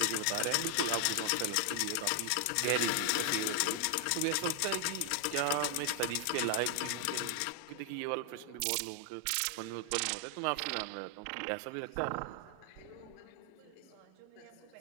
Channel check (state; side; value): different; both; correlation 0.00